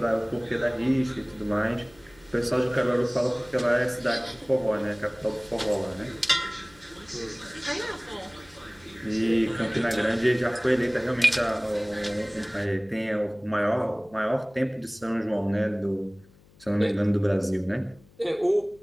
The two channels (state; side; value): noise; left; hum, 27 dB below the sound